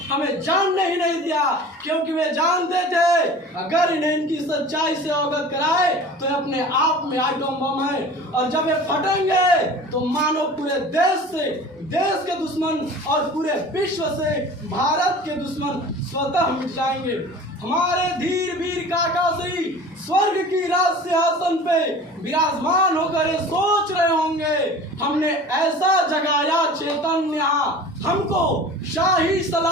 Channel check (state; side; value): normal; both; correlation 0.40